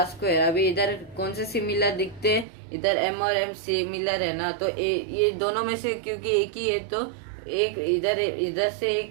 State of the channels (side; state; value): left; drops out; at 2.5 s